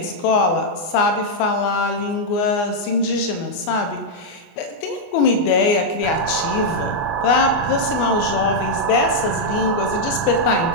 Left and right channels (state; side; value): late; right; 24 ms